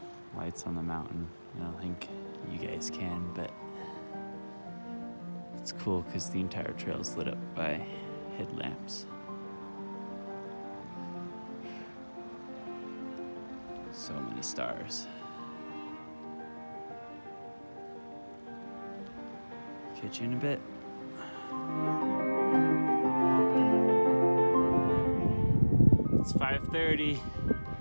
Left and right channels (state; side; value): inverted; both; correlation -1.00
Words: lights on the mountain. I don't think you guys can, but it's cool because the entire trail is lit up by headlamps. So many stars. Catch you in a bit. It's 5:30.